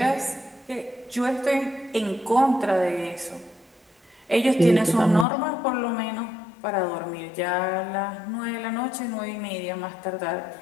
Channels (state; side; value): drops out; right; at 5.2 s